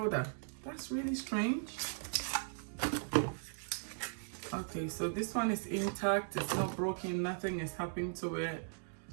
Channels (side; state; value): left; silent; digital silence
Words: That's really strange. Okay, so this one is intact. It's not broken. Nothing is happening to it.